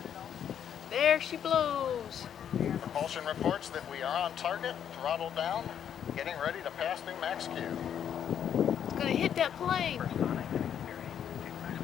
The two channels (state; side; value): quieter; right; 9.0 dB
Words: There she blows. Propulsion reports that we are on target, throttle down, getting ready to pass through max Q. It's gonna hit that plane.